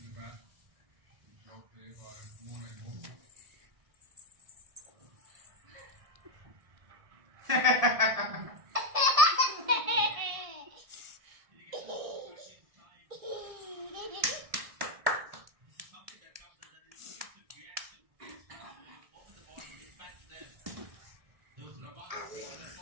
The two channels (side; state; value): left; late; 1.6 ms